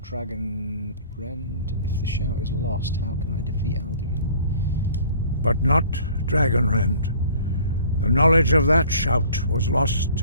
Rend? If the shout is lost, how can I defeat Alduin? But not Dragon Rend. The knowledge of that shout was lost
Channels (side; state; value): both; inverted; correlation -0.50